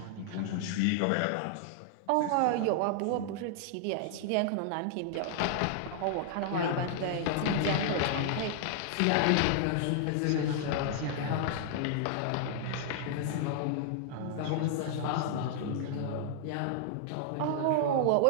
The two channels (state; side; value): different; both; correlation -0.01